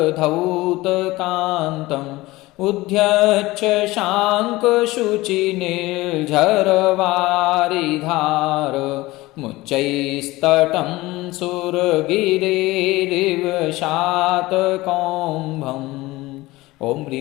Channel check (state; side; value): quieter; right; 19.6 dB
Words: उद्यच्छ शाङ्कशुचिनिर्झरवारिधार मुच्चैस्तटं सुरगिरेरिव शातकौम्भम्। ॐ